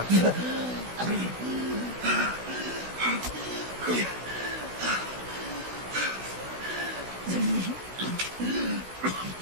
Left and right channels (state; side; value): late; left; 16 ms